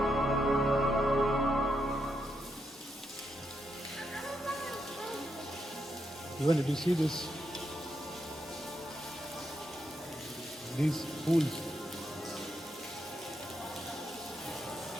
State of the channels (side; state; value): both; normal; correlation 0.82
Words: Even did you see this? These pools.